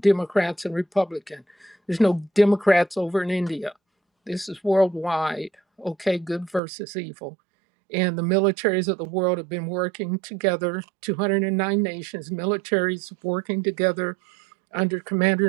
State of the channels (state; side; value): drops out; left; at 6.6 s